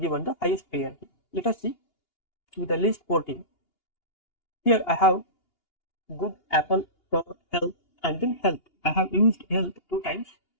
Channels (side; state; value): right; late; 2.8 ms